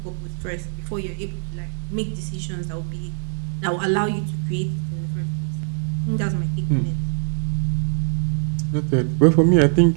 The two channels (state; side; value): silent; left; 57 dB below the other